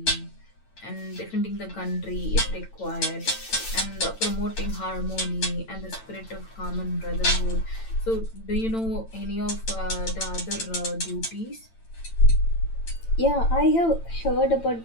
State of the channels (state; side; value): late; right; 8.9 ms